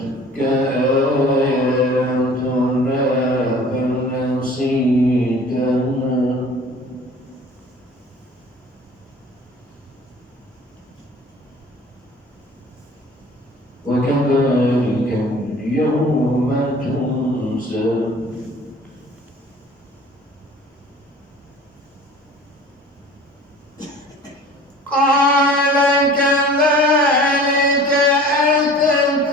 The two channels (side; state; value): both; normal; correlation 0.46